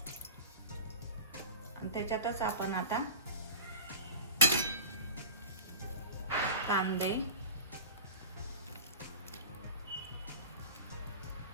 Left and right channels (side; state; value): both; inverted; correlation -0.33